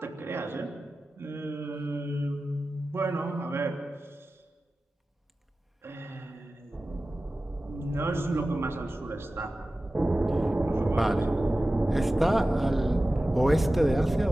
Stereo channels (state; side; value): normal; both; correlation 0.95